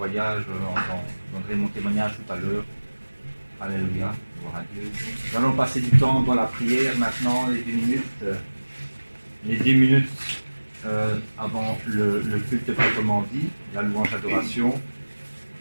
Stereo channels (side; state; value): both; inverted; correlation -1.00